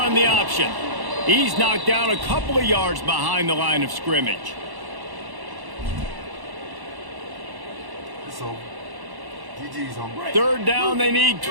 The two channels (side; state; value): left; late; 1.1 ms